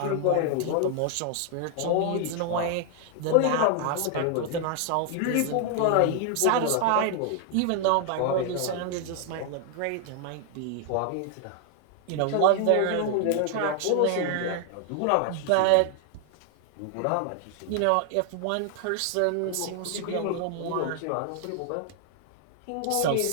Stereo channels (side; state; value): both; different; correlation 0.00